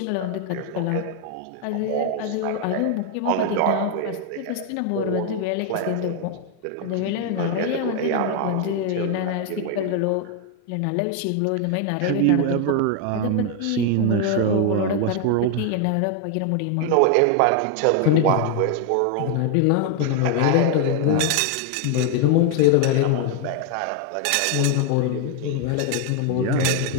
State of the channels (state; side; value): different; both; correlation 0.00